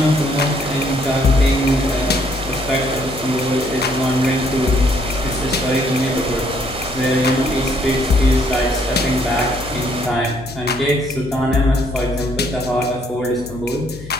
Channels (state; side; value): noise; left; hum, 14 dB below the sound